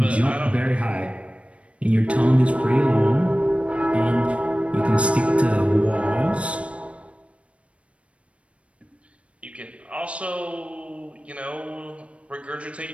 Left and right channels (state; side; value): late; left; 0.062 ms